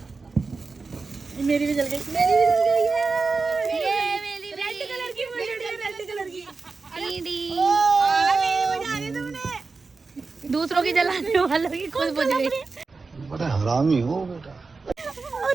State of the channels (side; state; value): left; quieter; 4.2 dB